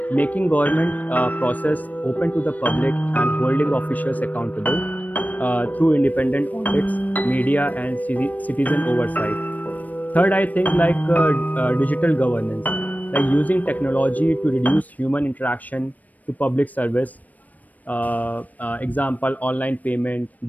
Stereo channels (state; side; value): late; right; 0.077 ms